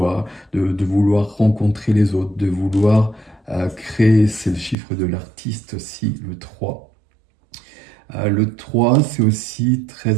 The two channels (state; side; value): drops out; left; at 4.8 s